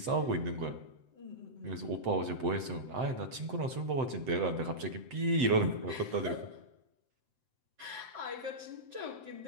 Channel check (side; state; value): left; late; 7.8 ms